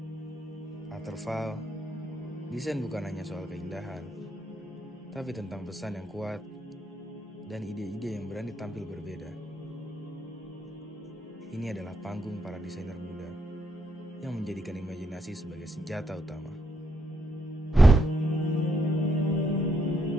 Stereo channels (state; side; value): normal; both; correlation 0.77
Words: Waterfall, desain bukan hanya soal keindahan, tapi tentang pesan yang kuat dan ide-ide yang berani tampil berbeda. Ini adalah panggung para desainer muda yang menjadikan imajinasi sebagai senjata utama.